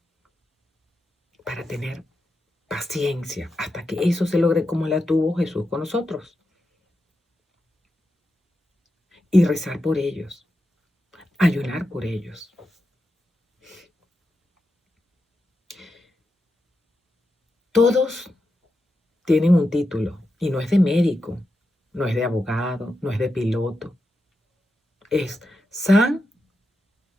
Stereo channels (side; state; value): both; normal; correlation 0.88